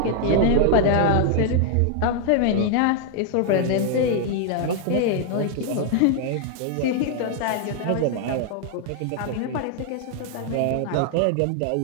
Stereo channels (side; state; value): both; different; correlation 0.00